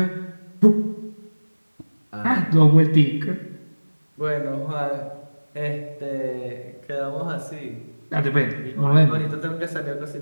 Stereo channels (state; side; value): inverted; both; correlation -1.00